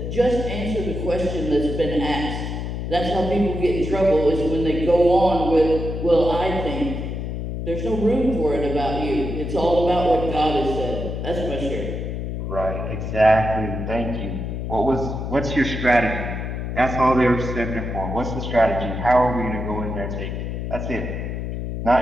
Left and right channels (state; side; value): noise; left; hum, 4 dB below the sound